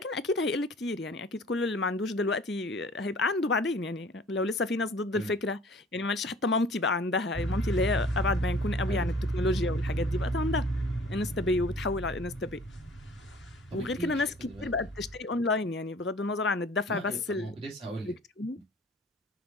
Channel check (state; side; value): normal; both; correlation 0.50